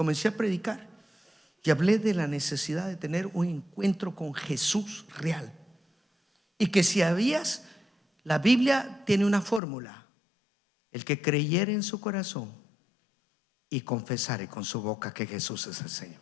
a predicar. Y hablé de la necesidad de tener un encuentro con Jesús real. Y que si la Biblia tiene una fórmula: el que creyere en su corazón y confesare con su boca que Jesús es el Señor.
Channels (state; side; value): drops out; right; at 9.6 s